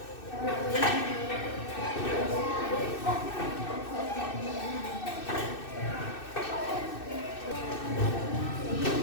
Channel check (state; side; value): late; right; 2.6 ms